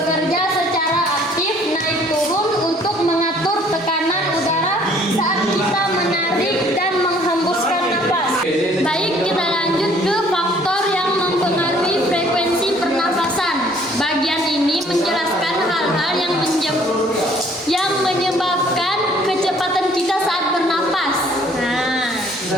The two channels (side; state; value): both; normal; correlation 0.58